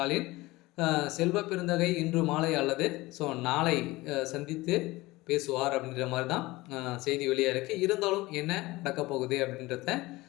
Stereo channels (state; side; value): quieter; right; 20.3 dB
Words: செல்வ பெருந்தகை இன்று மாலை அல்லது நாளை சந்தித்து பேசுவார் அப்படின்ற மாதிரி தான் செய்தி வெளியாக இருக்குது. இருந்தாலும் என்ன நடக்க போகுது அப்படின்றத